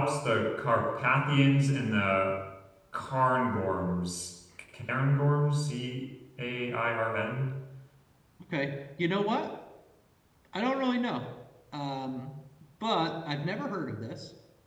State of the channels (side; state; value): both; identical; correlation 1.00